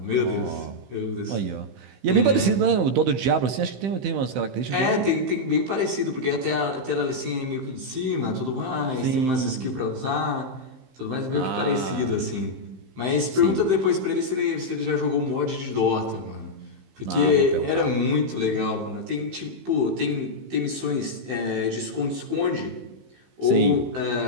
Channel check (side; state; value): left; late; 15 ms